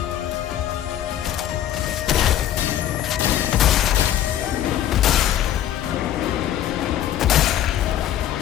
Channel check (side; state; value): right; quieter; 11.5 dB